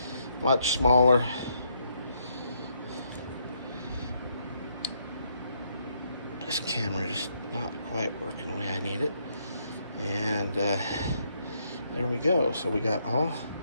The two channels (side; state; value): both; inverted; correlation -0.74